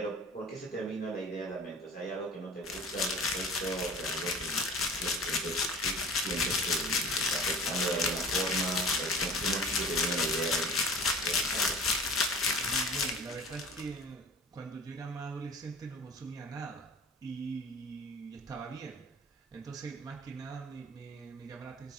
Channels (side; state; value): both; normal; correlation 0.40